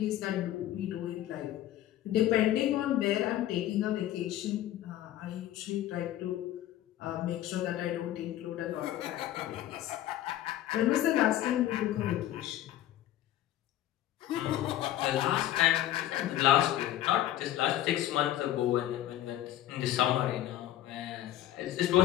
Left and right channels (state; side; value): quieter; right; 13.2 dB